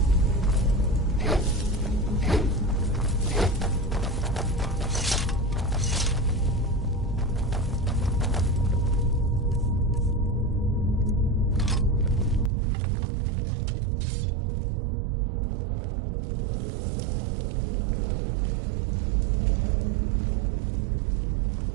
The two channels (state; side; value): drops out; left; at 12.5 s